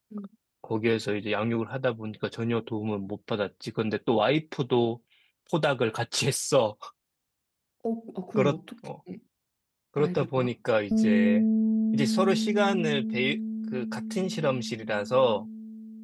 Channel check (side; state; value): both; identical; correlation 1.00